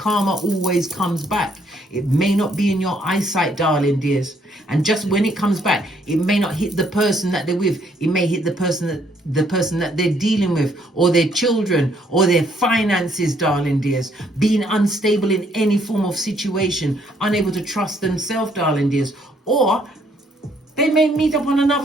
always comes back. It may not be in your eyesight, darling dears. And just when it comes back, it may not hit the person that they're with. It may hit the person that they're dealing with, or their children, or their finances, darling dears. Being unstable in any form of situation, unable to trust themselves, darling dears. Or they may meet up on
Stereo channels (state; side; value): normal; both; correlation 0.68